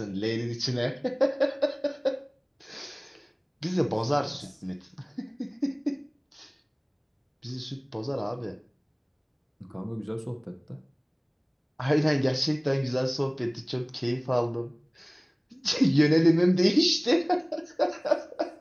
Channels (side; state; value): both; identical; correlation 1.00